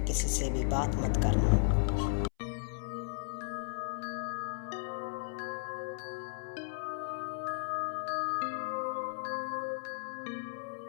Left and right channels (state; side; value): silent; right; 54 dB below the other